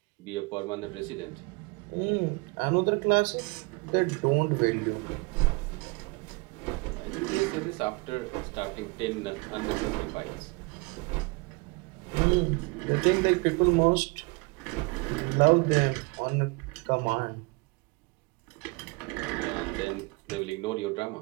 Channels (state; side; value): quieter; left; 27.9 dB